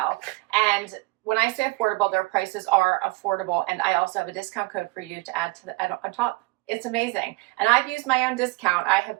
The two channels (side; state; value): left; quieter; 23.6 dB